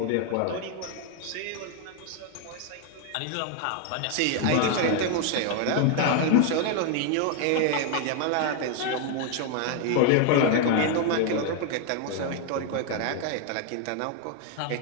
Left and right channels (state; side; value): different; both; correlation 0.01